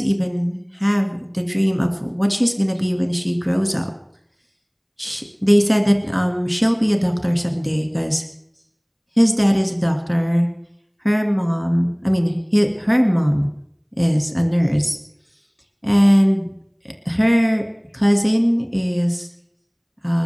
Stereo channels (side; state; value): both; identical; correlation 1.00